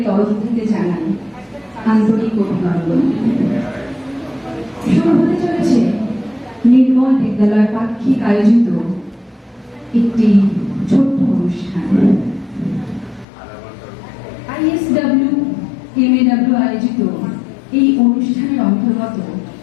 তরফ থেকে জানাই আন্তরিক অভিনন্দন। শুরু হতে চলেছে নির্মল বিদ্যালয় পাক্ষিক আয়োজিত একটি ছোট্ট অনুষ্ঠান। ISW MAW আয়োজিত এই অনুষ্ঠানের অন্তর্গত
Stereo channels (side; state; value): right; drops out; at 13.2 s